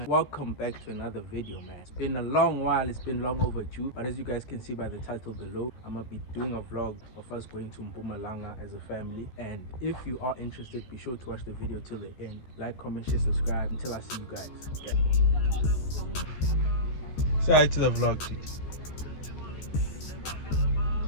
Welcome back to another video, man. It's been a long while, it's been long overdue, but as you guys can see by the title below, I'm gonna be doing a vlog of us going to Mpumalanga as a family. And if you are interested, be sure to watch the video till the end. Like, comment, share, subscribe until I see you guys. Okay. Say hi to the vlog, dude.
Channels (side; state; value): right; late; 14 ms